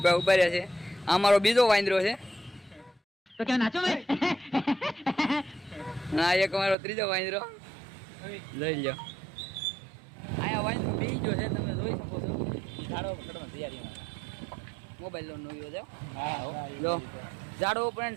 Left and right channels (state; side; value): drops out; left; at 6.8 s